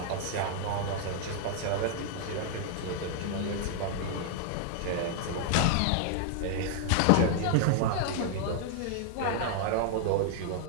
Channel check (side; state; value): both; different; correlation 0.00